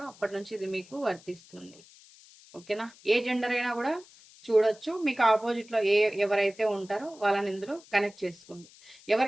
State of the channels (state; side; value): noise; left; hiss, 24 dB below the sound